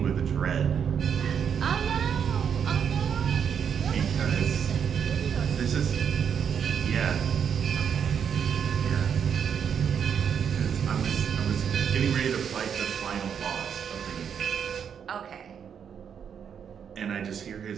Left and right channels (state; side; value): quieter; left; 7.6 dB